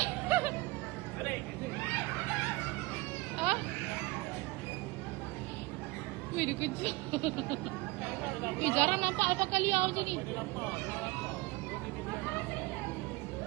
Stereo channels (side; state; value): left; quieter; 22.1 dB